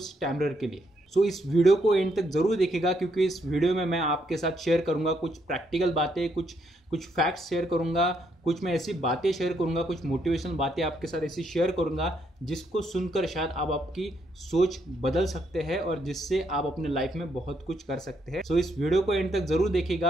स्टैमरर के लिए। इस वीडियो को एंड तक जरूर देखिएगा, क्योंकि इस वीडियो में मैं आपके साथ शेयर करूंगा कुछ प्रैक्टिकल बातें, कुछ कुछ फैक्ट्स शेयर करूंगा, कुछ मैं ऐसी बातें शेयर करूंगा, कुछ मोटिवेशनल बातें आपके साथ ऐसी शेयर करूंगा जिसको सुनकर शायद आप आपकी सोच बदल सकते हैं और जिससे आप अपने लाइफ में बहुत कुछ कर सकते हैं। इस वीडियो को एंड तक जरूर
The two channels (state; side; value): normal; both; correlation 0.74